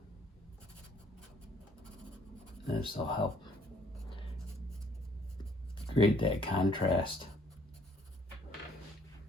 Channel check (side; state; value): both; normal; correlation 0.63